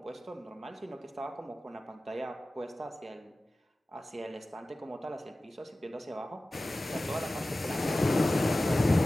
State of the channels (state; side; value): normal; both; correlation 0.96